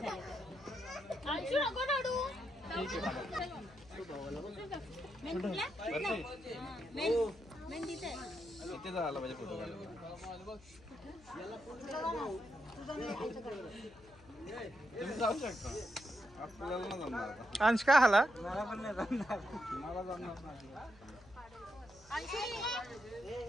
तर. अंशू नको रडू. मेन कुठला? मेन तिथे. किती झाला पाहिजे फोटो काढायला. तुम्ही जाऊ शकता. आपल्याला नाही जमणार. अंश काय आला? मला पण नाही जमणार. मला जमणार नाही.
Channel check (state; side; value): noise; left; hum, 24 dB below the sound